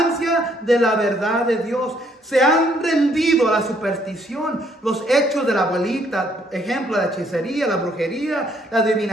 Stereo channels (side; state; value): both; normal; correlation 0.67